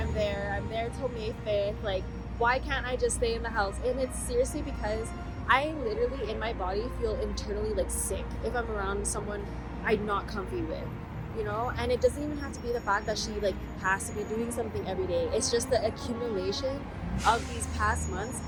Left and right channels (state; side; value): identical; both; correlation 1.00